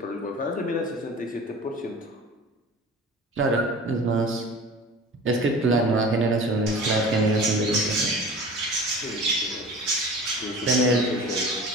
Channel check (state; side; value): normal; both; correlation 0.38